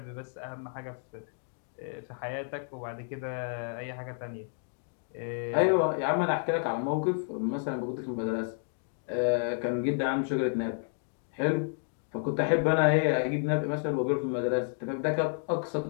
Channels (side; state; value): right; silent; 57 dB below the other